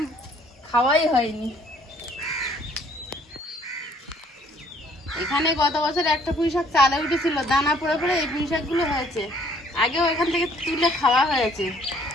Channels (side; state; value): both; normal; correlation 0.61